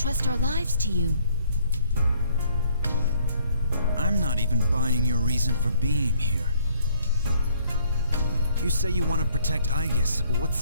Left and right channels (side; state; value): both; inverted; correlation -0.64